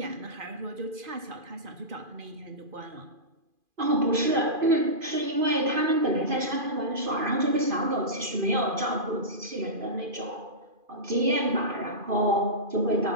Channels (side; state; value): left; late; 2.5 ms